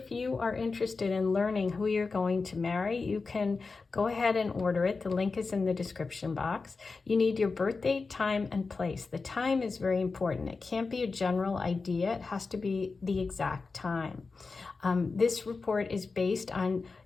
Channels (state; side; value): quieter; right; 4.3 dB